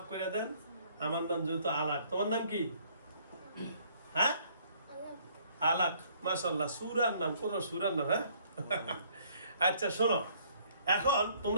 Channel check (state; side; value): inverted; both; correlation -0.62